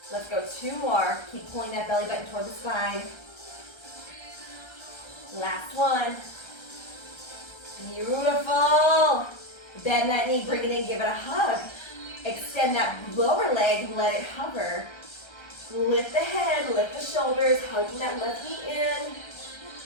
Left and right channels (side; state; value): right; late; 1.3 ms